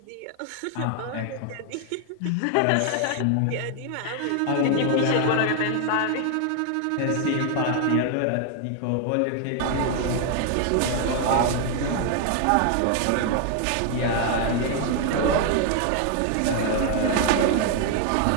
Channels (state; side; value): different; both; correlation 0.00